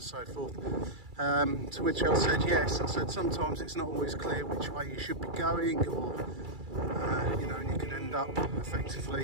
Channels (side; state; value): left; late; 2.3 ms